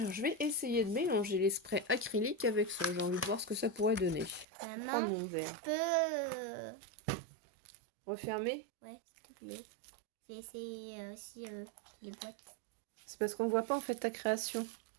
je vais essayer de mélanger les sprays acryliques avec ça. J'ai envie de voir ce que ça pourrait donner. Je vais prendre Maman, mon verre. tu peux... Refermer? Ouais, s'il te plaît. J'ai essayé aussi les boîtes. C'est parce qu'on voit pas en fait ta création.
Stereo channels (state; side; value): drops out; left; at 4.5 s